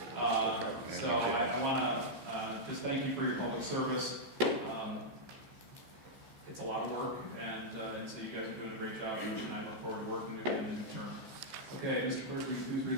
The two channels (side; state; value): left; late; 15 ms